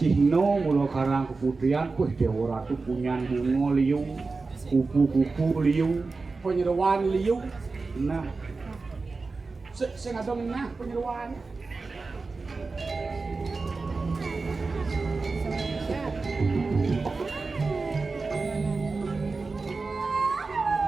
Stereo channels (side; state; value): left; quieter; 4.0 dB